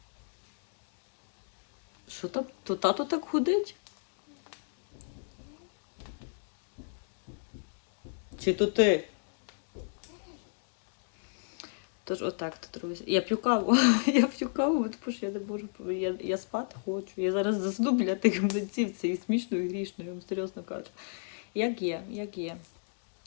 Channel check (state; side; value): silent; right; digital silence